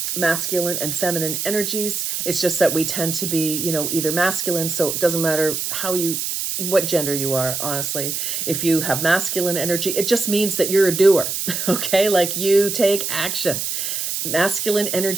masculine and feminine energies. It's just that we tend to be, either masculine. So it doesn't matter what gender you are, honestly. If you have masculine energy, it just means that you're a doer. Okay. Like you take action. Masculine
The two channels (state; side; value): noise; right; hiss, 2 dB below the sound